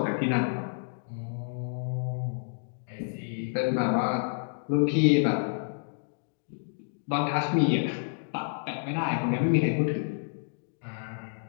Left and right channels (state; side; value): silent; right; digital silence